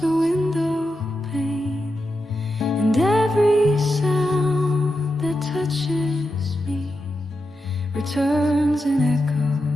the window pane, and every sound that touches me returns an echo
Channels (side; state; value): both; normal; correlation 0.88